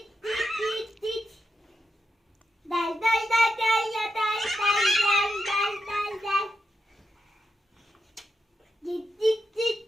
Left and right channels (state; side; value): normal; both; correlation 0.86